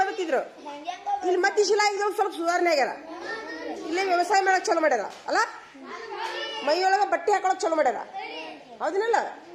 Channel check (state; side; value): identical; both; correlation 1.00